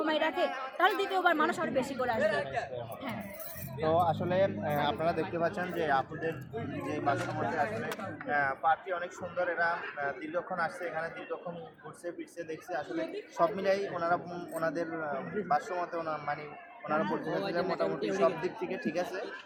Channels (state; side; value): identical; both; correlation 1.00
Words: রাখে তাহলে দ্বিতীয়বার মানুষ আরো বেশি করে আসবে। হ্যাঁ। তো আসলে আপনারা দেখতে পাচ্ছেন যে আপনাদের যে বাসামতে আসলে পার্কটি অনেক সুন্দর। এরা দীর্ঘক্ষণ আসছে, এখানে দীর্ঘক্ষণ ঘুরছে ফিরছে দেখছে। আসলে সব মিলাই ওনারা ওনাদের ভাষ্যমতে মানে ওনারা বলতেছেন মোটামুটি সব দিক থেকে ঠিক আছে,